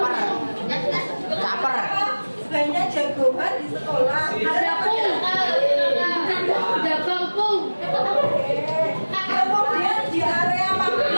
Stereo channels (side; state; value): both; inverted; correlation -1.00